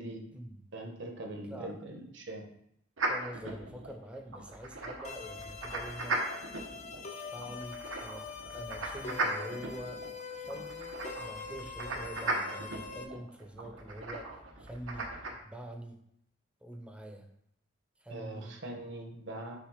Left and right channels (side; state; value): both; normal; correlation 0.20